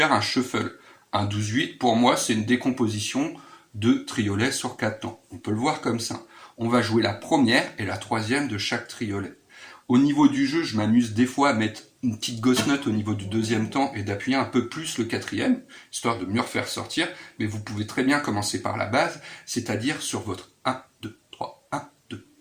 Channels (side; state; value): both; identical; correlation 1.00